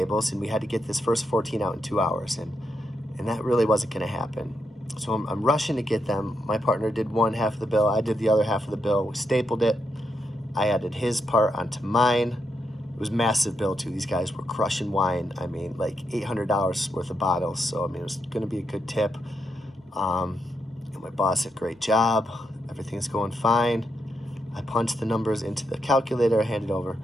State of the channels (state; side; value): normal; both; correlation 0.81